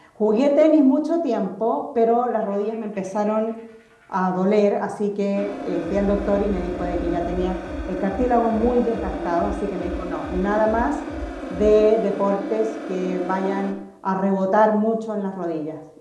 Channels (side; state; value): both; identical; correlation 1.00